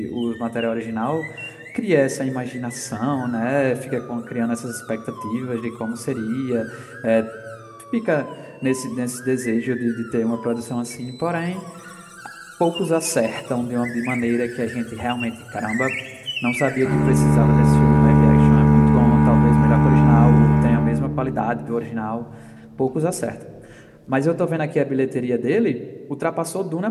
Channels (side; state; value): both; identical; correlation 1.00